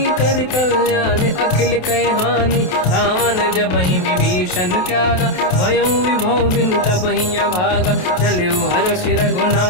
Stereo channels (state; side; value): late; right; 28 ms